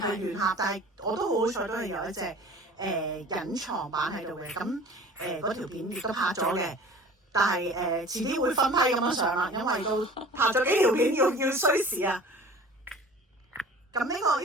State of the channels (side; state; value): both; normal; correlation 0.43